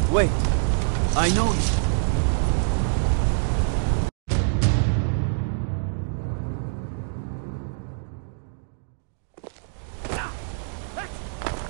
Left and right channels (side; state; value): left; silent; digital silence